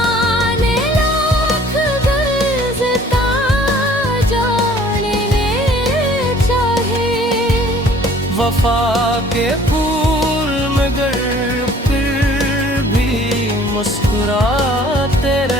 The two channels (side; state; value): both; normal; correlation 0.54